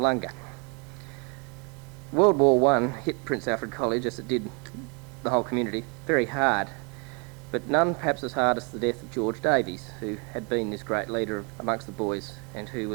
World War I hit Prince Alfred College, as it did the whole community, very hard, but none perhaps as hard as the death of George Davies, who had been this great leader amongst the boys and who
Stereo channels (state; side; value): quieter; left; 33.7 dB